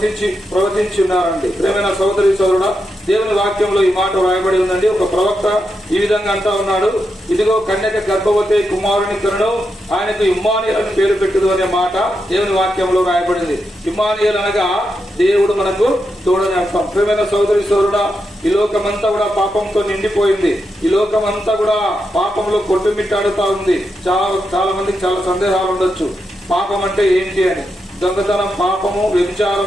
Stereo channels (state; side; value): normal; both; correlation 0.85